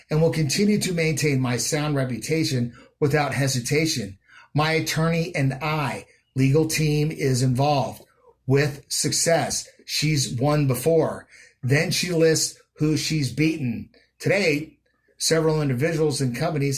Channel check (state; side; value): identical; both; correlation 1.00